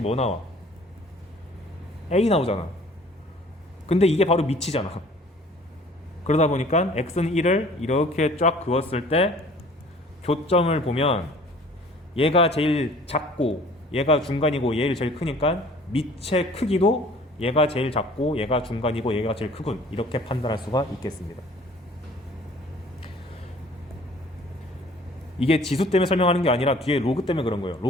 나와? a 나오잖아. 근데 이게 바로 밑이잖아. 그러다 보니까 x는 1을 이렇게 쫙 그었을 때 교점을 보면 얘가 제일 작고 얘가 중간이고 얘를 제일 크니까 밑의 크기도 얘가 제일 작고 얘가 중간이고 얘가 제일 크군 이렇게 판단할 수가 있겠습니다. 이게 지수 때문에 설명하는 게 아니라 뒤에 로그 때문에 그런 거예요.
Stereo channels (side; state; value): both; normal; correlation 0.51